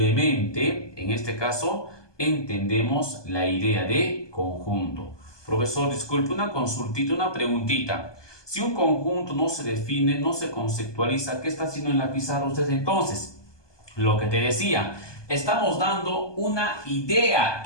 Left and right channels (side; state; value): right; late; 1.2 ms